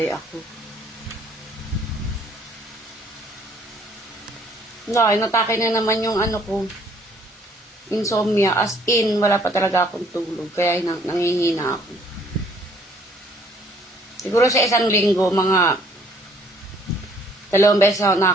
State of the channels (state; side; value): normal; both; correlation 0.62